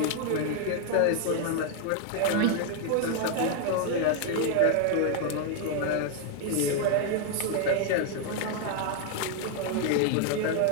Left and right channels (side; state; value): both; different; correlation 0.00